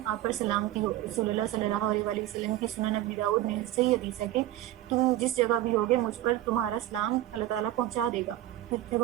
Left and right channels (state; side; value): quieter; left; 14.3 dB